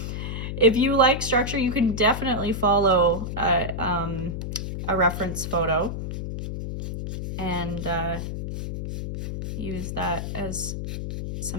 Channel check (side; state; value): left; noise; hum, 4 dB below the sound